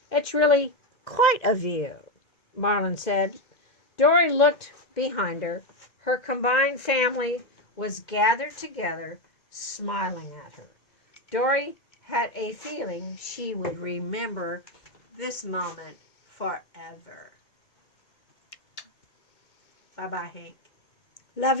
"It's really quite a view," Marlin said. Dory looked behind her. Her combined family was gathered together, smiling at her. Dory had a feeling she would remember this moment forever. Bye-bye, Hank. Love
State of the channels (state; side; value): late; right; 1.9 ms